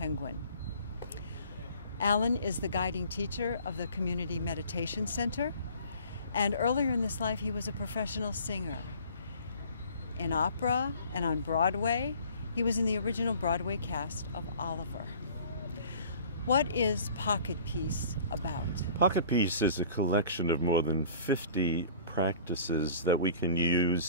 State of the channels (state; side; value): inverted; both; correlation -0.48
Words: Allan is the guiding teacher of the Community Meditation Center, and earlier in his life he was a professional singer. In opera and on Broadway, he was in the original Broadway cast of Oliver. What is Pocket Peace about? Pocket Peace is a collection of more than 50 practices that we can